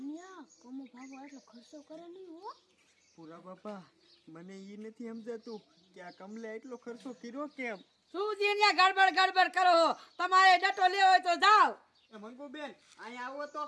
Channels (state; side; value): identical; both; correlation 1.00